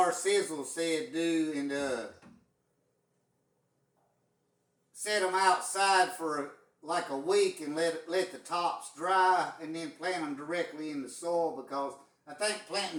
Sizzle said do, and set them outside for like a week and let the tops dry and then plant them directly in the soil, because I think planting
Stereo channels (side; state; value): both; identical; correlation 1.00